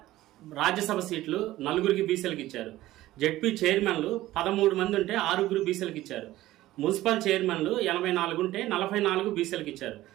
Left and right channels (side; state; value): left; quieter; 15.9 dB